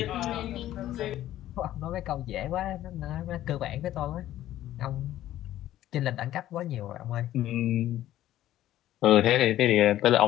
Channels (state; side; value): quieter; right; 13.4 dB